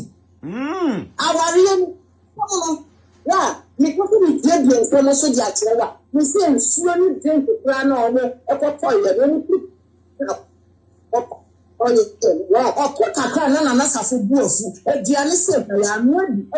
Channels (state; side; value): identical; both; correlation 1.00